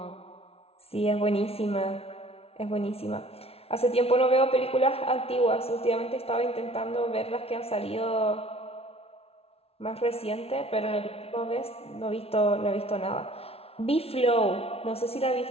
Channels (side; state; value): right; late; 0.29 ms